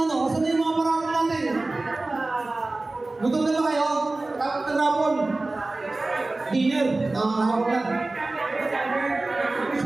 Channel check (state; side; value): quieter; left; 3.1 dB